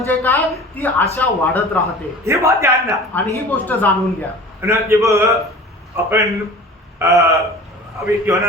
काय? ती आशा वाढत राहते. हे बात ध्यान ना. आणि ही गोष्ट जाणून घ्या. ना जब अपन अभी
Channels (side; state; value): both; normal; correlation 0.41